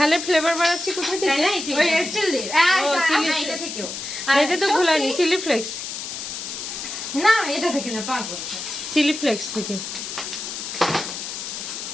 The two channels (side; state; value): left; noise; hiss, 7 dB below the sound